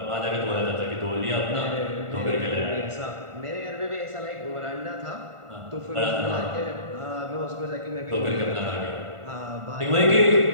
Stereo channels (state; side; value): late; left; 1.5 ms